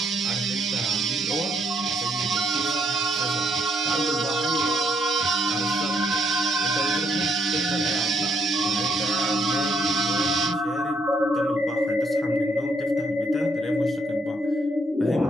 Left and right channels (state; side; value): normal; both; correlation 0.71